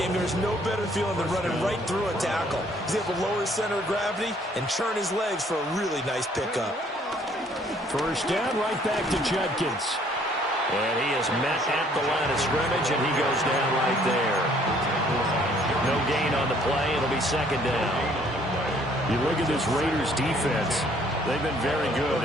there's no better feeling than running right through a tackle. He's able to lower his center of gravity and churn his legs for a really nice pickup. First down, right back to Judkins. And he is met at the line of scrimmage, and he goes down right there. No gain on the play. It'll be second down. You look at this Raiders defense. They've been very good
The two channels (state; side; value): normal; both; correlation 0.61